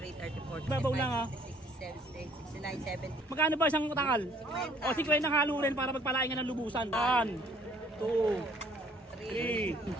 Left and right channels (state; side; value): normal; both; correlation 0.60